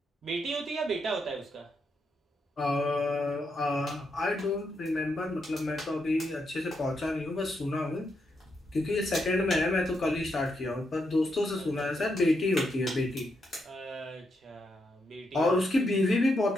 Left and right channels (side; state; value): both; normal; correlation 0.81